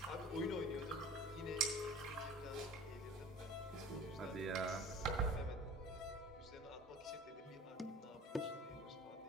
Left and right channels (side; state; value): both; normal; correlation 0.42